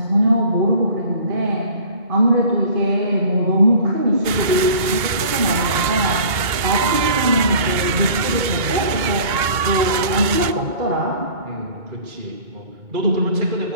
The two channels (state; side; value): late; left; 2.2 ms